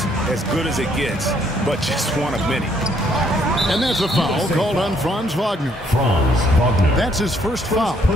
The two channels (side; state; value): both; normal; correlation 0.68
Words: as good as it gets, but just one of many. And that's a foul called on Franz Wagner. Franz Wagner. That's his first foul.